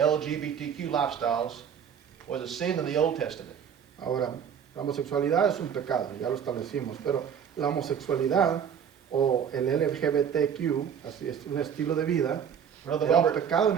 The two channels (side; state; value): left; quieter; 8.0 dB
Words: lifestyles, was a sin in the Old Testament. Ahora, la homosexualidad es un pecado, ya lo establecimos, pero la homosexualidad o el LGBTQ, así es un estilo de vida, Brother era un Robert, pecado en